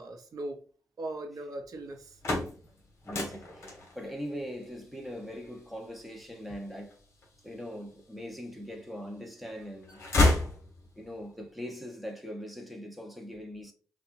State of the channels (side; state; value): both; normal; correlation 0.75